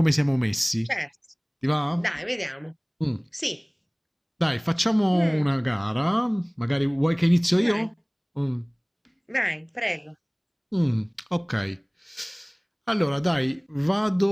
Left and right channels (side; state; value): both; identical; correlation 1.00